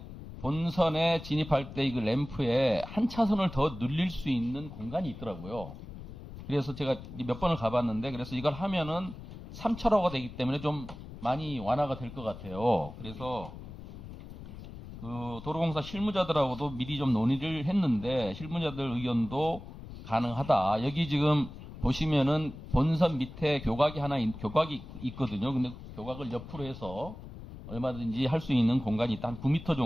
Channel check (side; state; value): left; noise; rumble, 13 dB below the sound